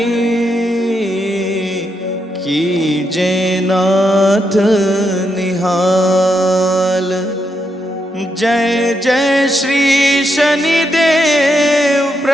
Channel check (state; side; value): normal; both; correlation 0.81